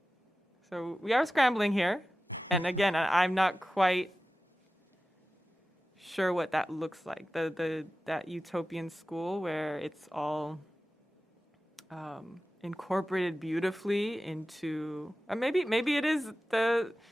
So we are scrambling here. And again, I'm not quite sure what that looks like. That utopian school where it's all incorporated beautifully into, or maybe it is the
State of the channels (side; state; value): both; normal; correlation 0.94